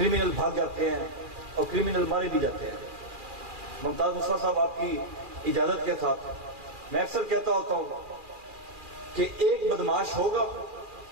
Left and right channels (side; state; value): left; late; 2.4 ms